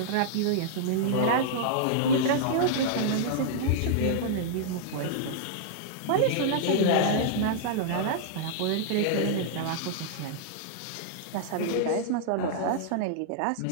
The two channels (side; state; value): both; different; correlation -0.01